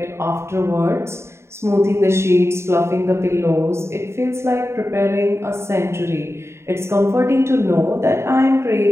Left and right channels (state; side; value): late; left; 0.13 ms